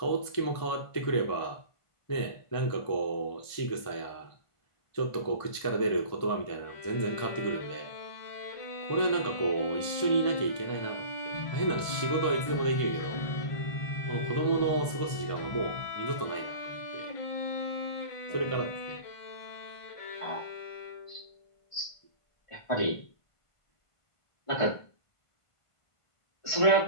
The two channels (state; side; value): late; right; 1.5 ms